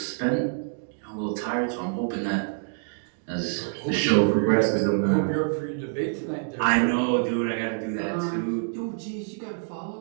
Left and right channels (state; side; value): silent; left; digital silence